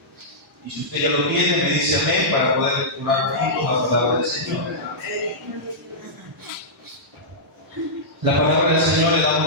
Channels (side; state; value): both; normal; correlation -0.13